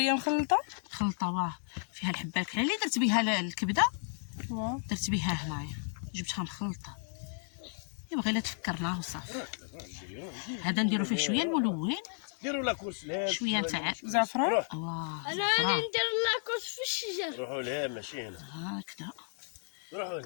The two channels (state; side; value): silent; right; 56 dB below the other